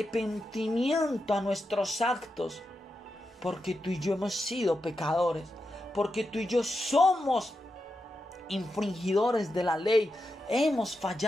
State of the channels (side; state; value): both; normal; correlation 0.88